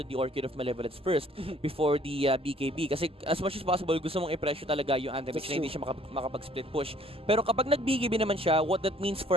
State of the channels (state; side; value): normal; both; correlation 0.59